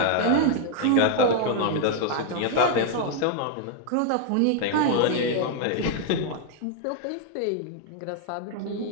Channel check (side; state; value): both; different; correlation 0.00